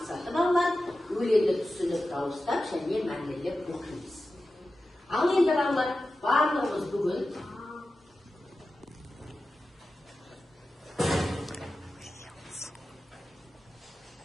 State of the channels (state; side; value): normal; both; correlation 0.93